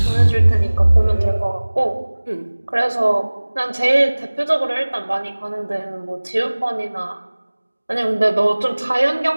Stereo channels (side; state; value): both; inverted; correlation -1.00